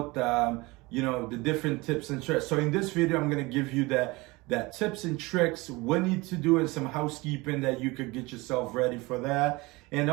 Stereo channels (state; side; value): quieter; left; 23.1 dB